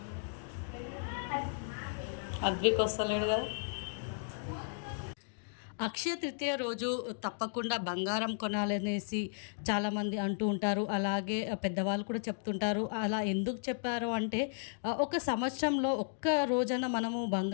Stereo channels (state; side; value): silent; right; digital silence